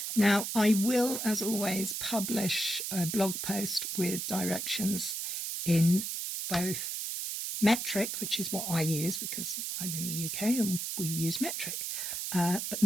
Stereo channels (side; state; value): right; noise; hiss, 3 dB below the sound